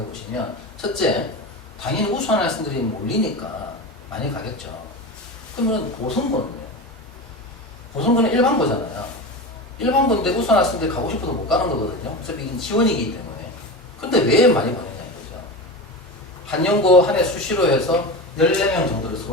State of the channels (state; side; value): normal; both; correlation 0.25